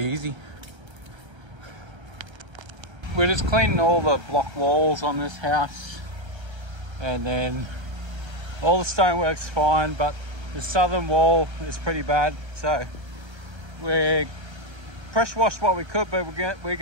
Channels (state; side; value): late; left; 1.3 ms